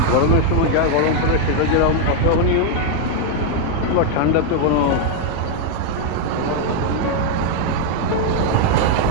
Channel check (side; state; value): both; different; correlation 0.00